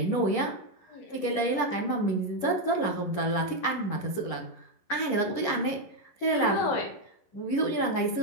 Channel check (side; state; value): right; late; 10 ms